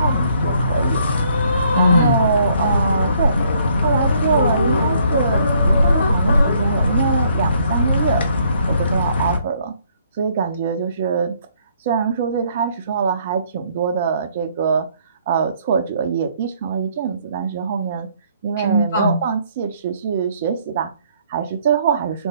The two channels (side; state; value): both; inverted; correlation -0.66